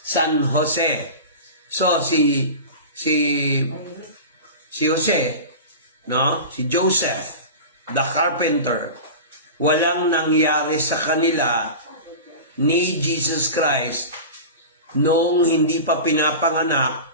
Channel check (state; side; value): inverted; both; correlation -0.30